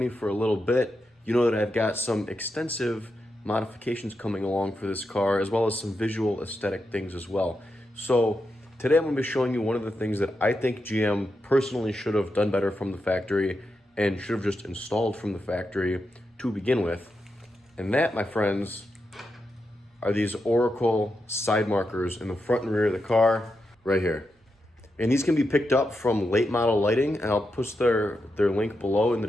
for a little bit, you know that I've got some extensive modifications coming along for this car, as well as some visual aesthetic things as well. So today I'm going to be showing you one of the things that I think GM personally should have done better from the factory and should have just installed from the factory to begin with. And that, my friends, are these Oracle side markers in the front and rear of the car right here. And these can be picked up from Late Model Lighting, and I'll post their link below in the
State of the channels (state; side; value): normal; both; correlation 0.86